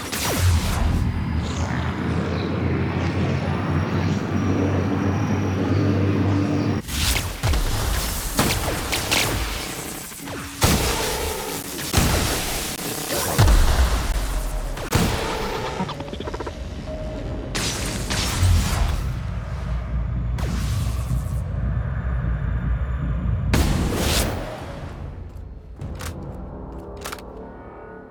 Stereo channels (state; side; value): identical; both; correlation 1.00